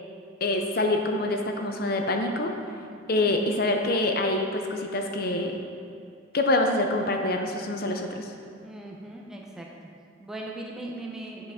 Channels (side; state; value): both; normal; correlation 0.14